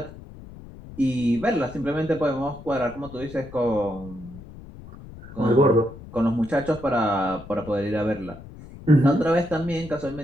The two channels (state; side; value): noise; left; rumble, 16 dB below the sound